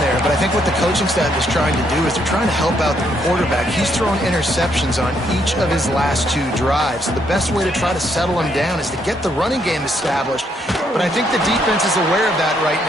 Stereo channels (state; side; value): normal; both; correlation 0.73